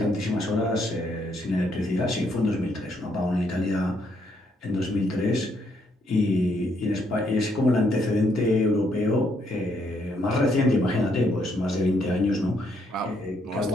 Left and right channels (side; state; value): both; normal; correlation 0.73